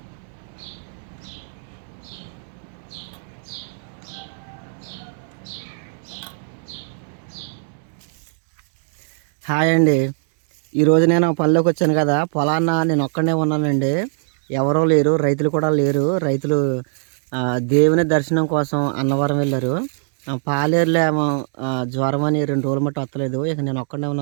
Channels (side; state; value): left; silent; 65 dB below the other